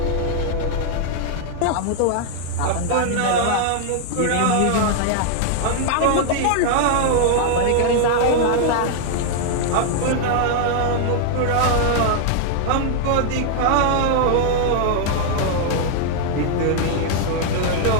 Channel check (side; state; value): both; different; correlation 0.00